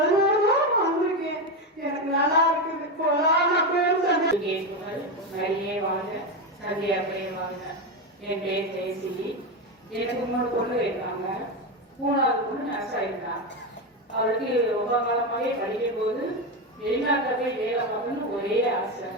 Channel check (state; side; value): normal; both; correlation 0.13